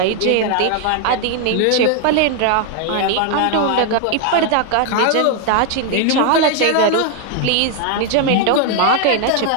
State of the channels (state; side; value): different; both; correlation 0.00